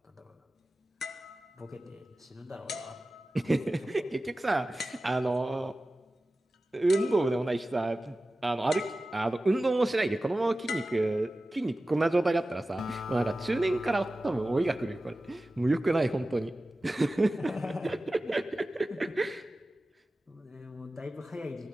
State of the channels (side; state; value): both; normal; correlation 0.95